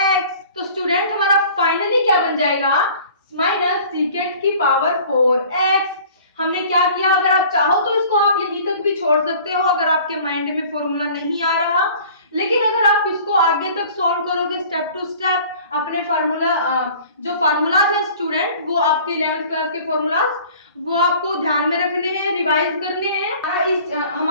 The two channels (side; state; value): both; inverted; correlation -0.48